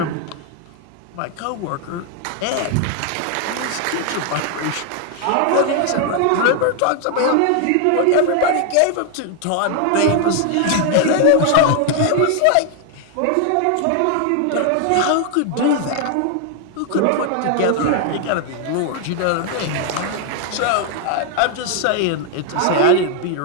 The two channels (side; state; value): both; different; correlation 0.00